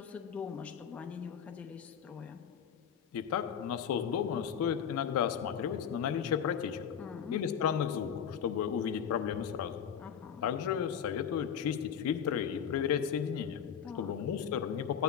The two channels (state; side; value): quieter; right; 8.0 dB